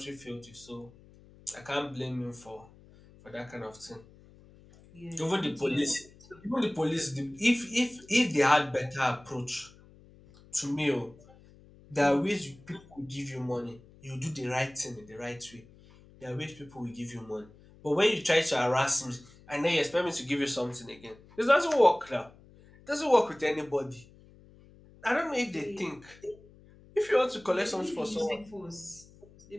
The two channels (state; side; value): noise; left; hum, 24 dB below the sound